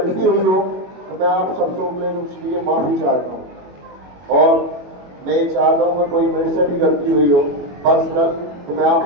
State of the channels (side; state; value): left; late; 22 ms